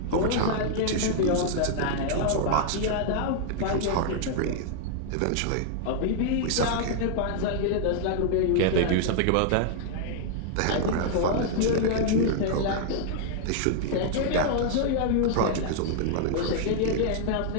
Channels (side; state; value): both; different; correlation -0.01